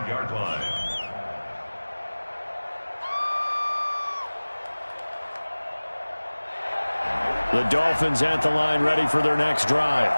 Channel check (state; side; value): inverted; both; correlation -1.00